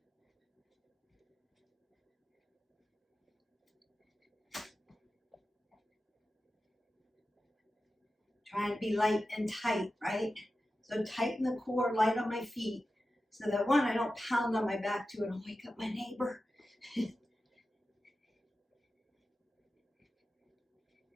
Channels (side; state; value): both; normal; correlation 0.93